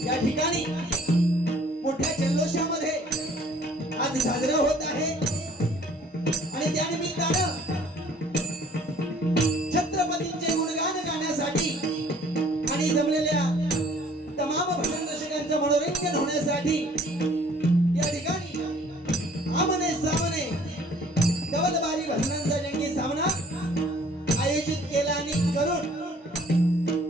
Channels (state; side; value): normal; both; correlation 0.56